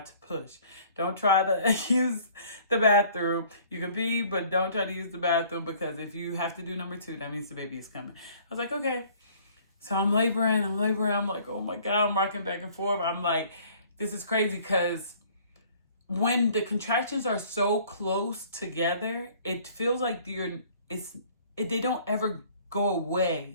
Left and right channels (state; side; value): inverted; both; correlation -0.55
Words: to push. Don't try to use the bathroom. You can pee, but don't try to use the bathroom because if you have to do number 2, that means the baby is coming. I was like, okay. So I'm laboring. I'm like, oh my God, I'm rocking back and forth. I'm like, this is crazy because when the contractions are so close together, it feels like they don't ever go